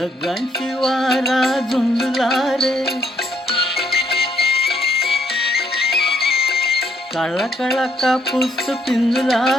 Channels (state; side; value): normal; both; correlation 0.71